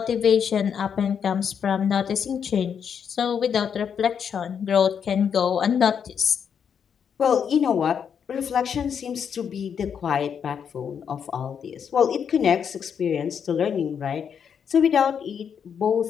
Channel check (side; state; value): right; quieter; 7.5 dB